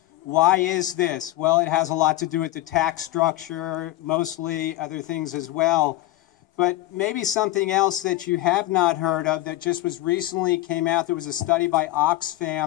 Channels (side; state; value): right; quieter; 16.4 dB